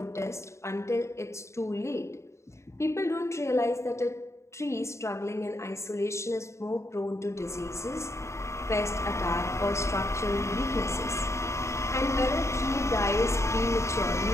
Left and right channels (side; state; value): right; late; 0.14 ms